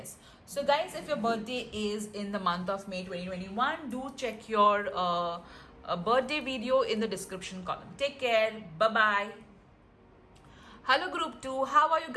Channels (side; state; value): both; identical; correlation 1.00